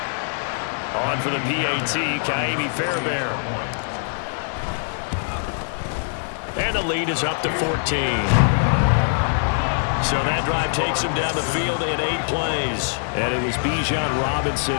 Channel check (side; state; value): right; silent; 64 dB below the other